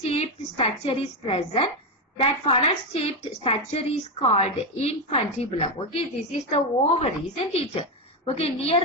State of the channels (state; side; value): normal; both; correlation 0.09